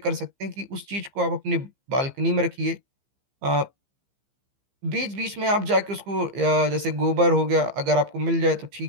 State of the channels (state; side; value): late; left; 15 ms